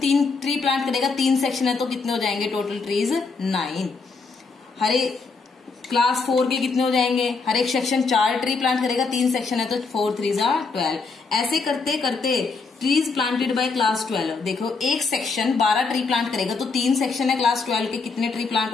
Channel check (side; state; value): right; quieter; 4.4 dB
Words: ट्री प्लांट करेगा, 3 सेक्शन है तो कितने हो जाएंगे टोटल ट्रीज? 9। हर एक क्लास 4 के कितने हो जाएंगे? हर एक सेक्शन 4 ट्री प्लांट करेगा, 3 सेक्शन है तो 4 3 12। ऐसे करते करते ट्रीज प्लांटेड बाय क्लास 12, देखो एक सेक्शन 12 ट्री प्लांट करेगा, तो 3 सेक्शन है क्लास 12 के, कितने ट्री प्लांट